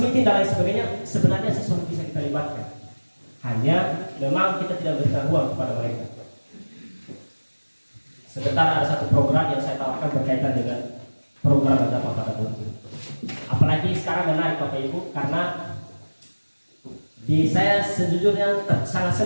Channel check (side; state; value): both; inverted; correlation -1.00